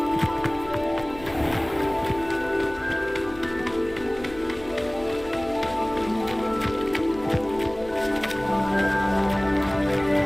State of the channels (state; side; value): noise; left; hum, 18 dB below the sound